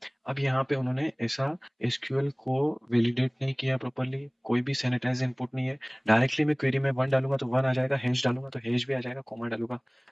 अब यहाँ पे उन्होंने ऐसा एसक्यूएल को वैलिडेट नहीं किया प्रॉपरली, कोई भी सैनिटाइज इनपुट नहीं है। डायरेक्टली मैं क्वेरी में 1 डालूंगा तो 1 आ जाएगा, हैश डालूंगा तो हैश भी आ जाएगा, कोमा डालूंगा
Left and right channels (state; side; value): identical; both; correlation 1.00